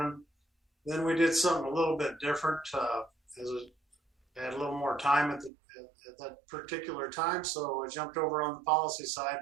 Then we did something a little bit different. As I had a little more time at that particular time, so I jumped over on the policy side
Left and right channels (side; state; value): left; drops out; at 5.5 s